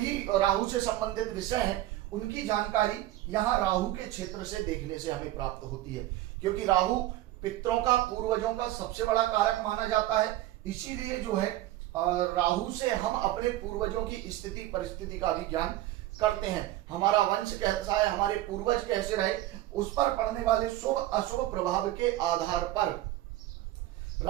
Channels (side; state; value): left; quieter; 15.3 dB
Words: राहु से संबंधित विषय हैं, उनकी जानकारी यहाँ राहु के क्षेत्र से देखने से हमें प्राप्त होती है। क्योंकि राहु पितरों का, पूर्वजों का सबसे बड़ा कारक माना जाता है। इसीलिए जो है राहु से हम अपने पूर्वजों की स्थिति परिस्थिति का भी ज्ञान करते हैं। हमारा वंश कैसा है, हमारे पूर्वज कैसे रहे, उस पर पड़ने वाले शुभ अशुभ प्रभाव के आधार पर